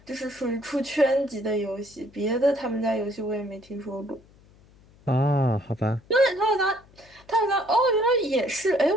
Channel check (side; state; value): left; noise; hum, 27 dB below the sound